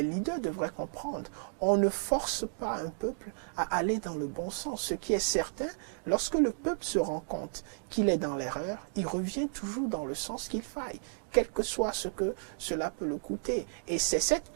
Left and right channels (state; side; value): silent; left; digital silence